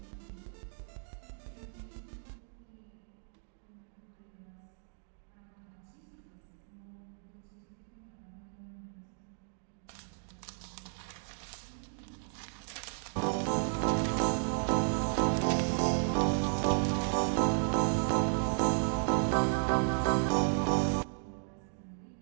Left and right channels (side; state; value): left; silent; digital silence